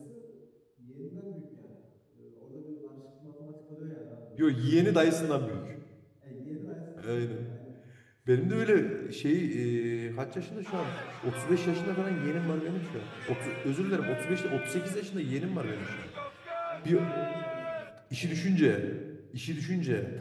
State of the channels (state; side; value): identical; both; correlation 1.00